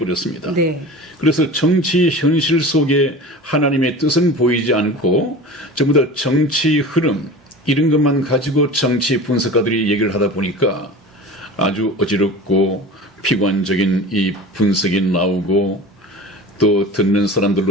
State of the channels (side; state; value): both; normal; correlation 0.36